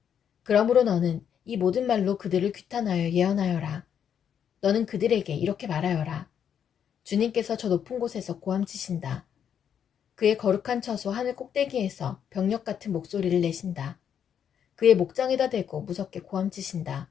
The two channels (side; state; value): right; quieter; 8.5 dB